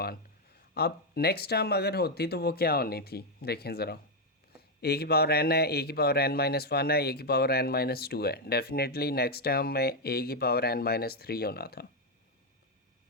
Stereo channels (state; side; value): normal; both; correlation 0.02